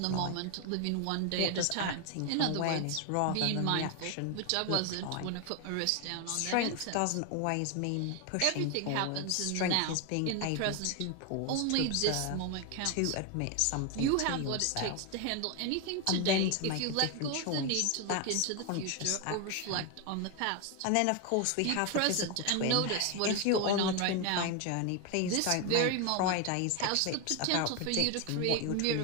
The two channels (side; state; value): both; different; correlation 0.01